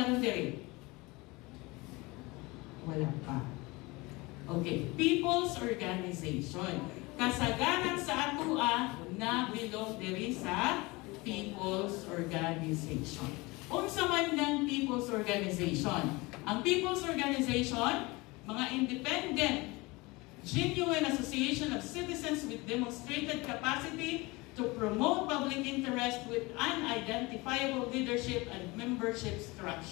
diri? Wala pa. Okay, people's organization. Kasagaran sa atua na bilong diri sa people's organization. Unsa man ng people's organization? Ang people's organization, mga independent genuine association of citizens with demonstrated capacity to promote public interest with unidentifiable leadership and membership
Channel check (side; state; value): right; quieter; 23.7 dB